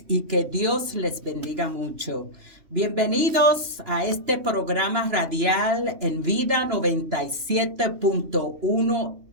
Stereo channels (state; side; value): late; left; 2.9 ms